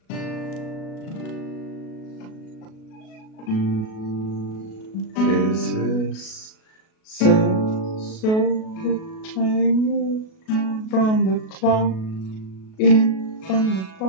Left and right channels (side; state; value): right; late; 37 ms